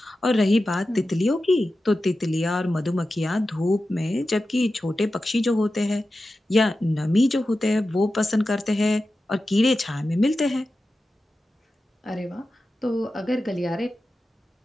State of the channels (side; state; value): both; normal; correlation 0.93